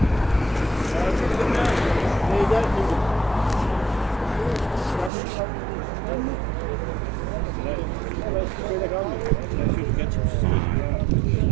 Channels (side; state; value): left; drops out; at 5.1 s